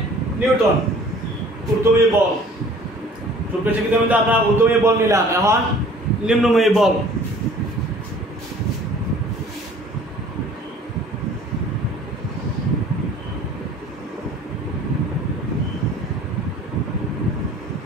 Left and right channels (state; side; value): normal; both; correlation 0.50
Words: নিউটন ঊর্ধ্বমুখী বল। ছোট শিক্ষিত কিন্তু আমরা ঊর্ধ্বমুখী বল নিলাম, এখন নিম্নমুখী বল।